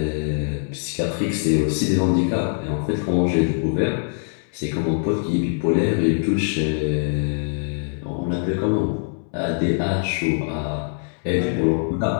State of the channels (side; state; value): right; silent; 64 dB below the other